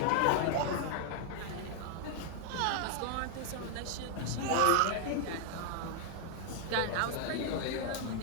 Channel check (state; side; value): different; both; correlation 0.00